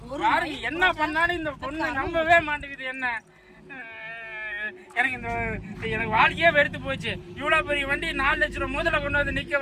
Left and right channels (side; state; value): both; identical; correlation 1.00